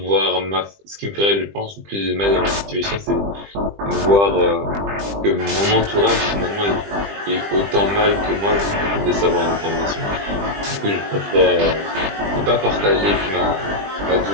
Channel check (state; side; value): late; left; 20 ms